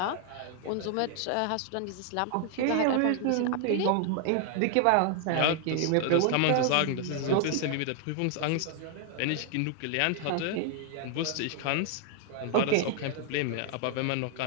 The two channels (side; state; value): both; different; correlation 0.00